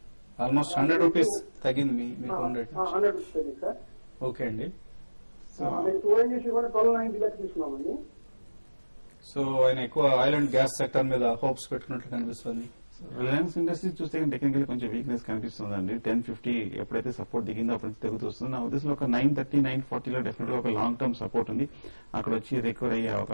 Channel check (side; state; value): both; inverted; correlation -1.00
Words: ఆల్మోస్ట్ 100 రూపీస్ తగ్గింది మీకు. 100 రూపీస్ తగ్గింది సార్. ఓకే అండి. మేము 2NGC కూడా 1290 లెక్క తీసుకున్నామండి. సో ఆయన ఎక్కువ ఆయిల్ అండ్ గ్యాస్ సెక్టర్ మీద హోప్స్ పెట్టుకున్నట్లు కనిపిస్తుంది. రిలయన్స్ ఇండస్ట్రీస్ చూస్తే టెక్నికల్ కొంచెం వీక్నెస్ కనిపిస్తుందండి. 1050 ఎప్పుడైతే సపోర్ట్ దిగిందో అప్పుడు తెగుతూ వస్తుంది. నా ఉద్దేశంలో ఒక 930, 940 లో డెఫినెట్ గా ఒక లాంగ్ టర్మ్ సపోర్ట్ ఉంది, అక్కడ వచ్చి రికవర్ అయ్యే